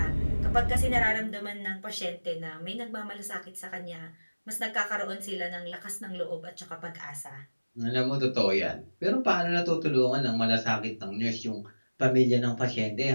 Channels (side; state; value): both; inverted; correlation -1.00